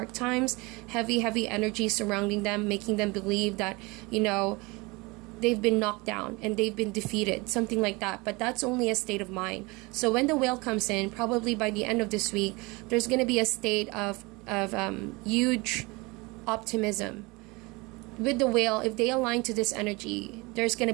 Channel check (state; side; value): quieter; left; 25.0 dB